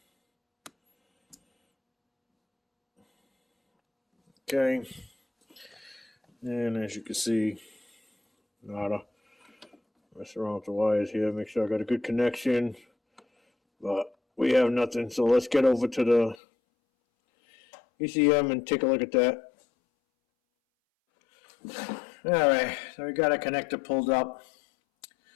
Okay. And as you can see, nada. Mess around with the wires here, make sure I got a good connection. But we have nothing, so let's get over to the ECM and take a look at that. Alright, so we got a connector pulled up.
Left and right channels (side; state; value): right; drops out; at 16.4 s